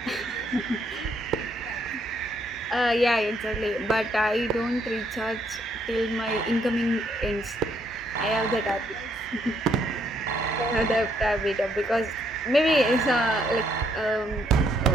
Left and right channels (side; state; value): both; normal; correlation 0.71